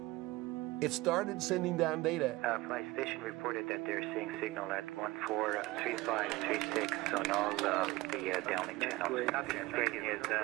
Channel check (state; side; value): quieter; left; 20.0 dB